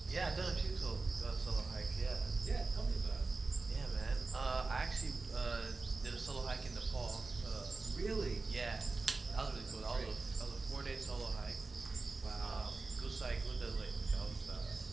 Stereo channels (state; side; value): quieter; left; 3.8 dB